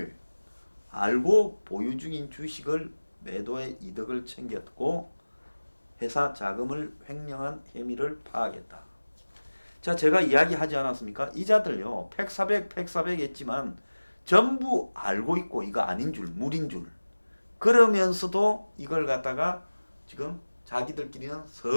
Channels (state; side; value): inverted; both; correlation -1.00